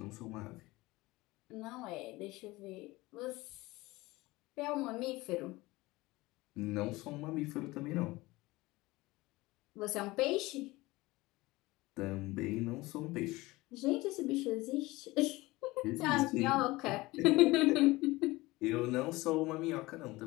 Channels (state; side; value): quieter; right; 20.5 dB